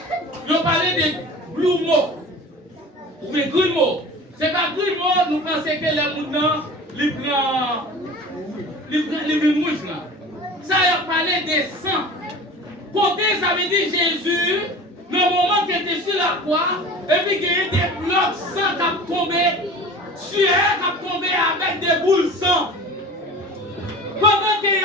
ils ont parlé de grumeaux. Mais grumeaux. C'est pas grumeaux, nous pensons que les moutons, ils prennent mouche là. Ça a parlé des sangs. Côté, ça veut dire Jésus, le moment qu'il était sur la croix, et puis qu'il y a des blocs sang qui ont tombé, sueur qui ont tombé avec des boules sang. Pendant qu'il a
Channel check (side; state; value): both; normal; correlation 0.38